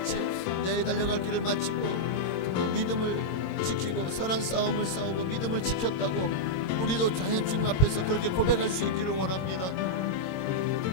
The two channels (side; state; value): right; late; 22 ms